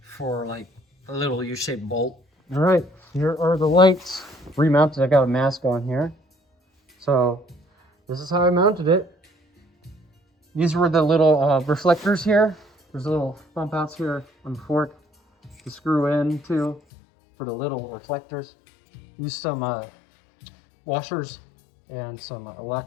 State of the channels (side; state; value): right; drops out; at 16.8 s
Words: for like a little U-shaped bolt. All right, here are the lights remounted. I got a mask on here. So this is how I mounted it. These were the little reflectors here. There's a little bump outs here on the fork to screw in to for the little reflectors. Used some washers and some